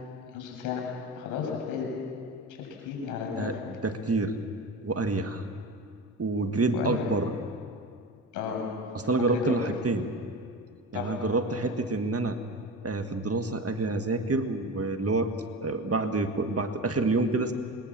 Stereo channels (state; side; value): normal; both; correlation 0.28